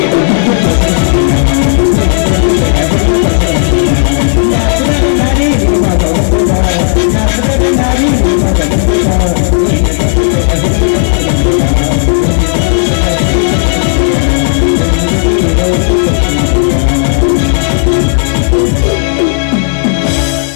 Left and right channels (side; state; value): right; silent; digital silence